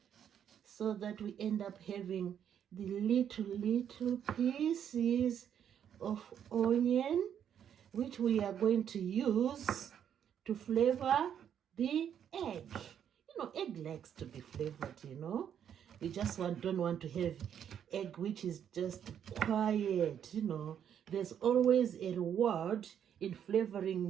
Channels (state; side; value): quieter; left; 9.0 dB